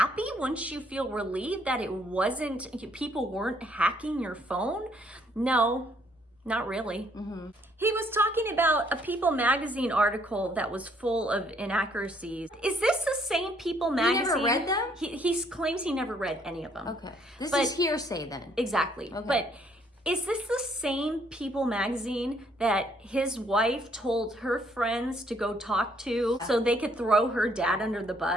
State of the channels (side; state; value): both; normal; correlation 0.66